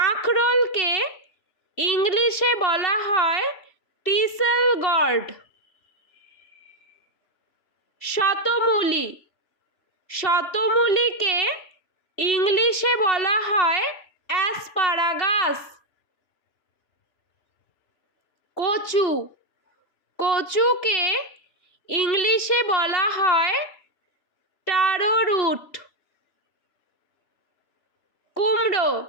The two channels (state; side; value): late; right; 3.0 ms